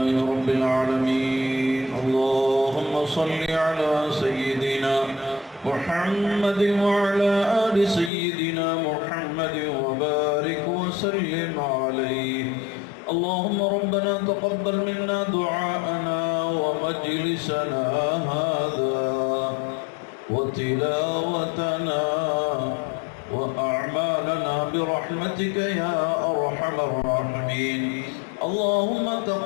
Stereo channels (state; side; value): drops out; right; at 8.1 s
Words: رب العالمين. اللهم صل على سيدنا محمد وعلى آل سيدنا محمد وبارك وسلم عليه. اللهم ربنا تقبل منا دعاءنا ومجلسنا هذا وتلاوتنا وأعمالنا برحمتك يا أرحم الراحمين. اللهم